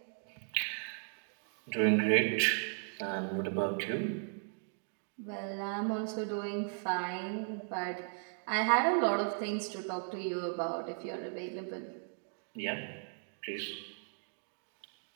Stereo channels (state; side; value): silent; left; 54 dB below the other